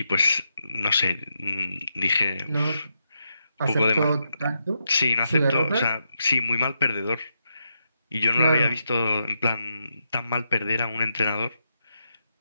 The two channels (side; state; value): both; inverted; correlation -0.83